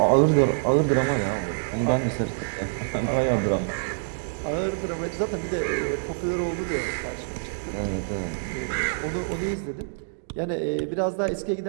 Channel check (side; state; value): left; silent; digital silence